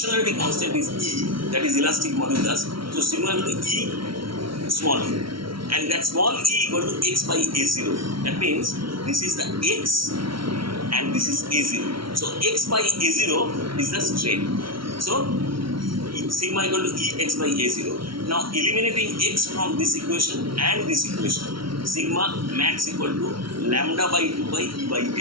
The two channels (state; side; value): late; left; 0.74 ms